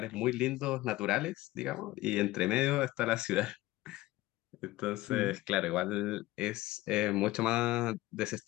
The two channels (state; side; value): quieter; right; 18.0 dB